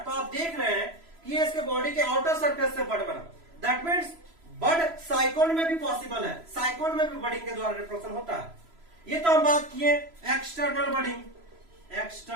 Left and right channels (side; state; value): left; late; 3.0 ms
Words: तो आप देख रहे हैं कि ये इसके बॉडी के आउटर सरफेस से बड बना, दैट मीन्स बड साइकोन में भी पॉसिबल है, साइकोन में भी बडिंग के द्वारा रिप्रोडक्शन होता है। ये तो हम बात किए एक्सटर्नल बडिंग,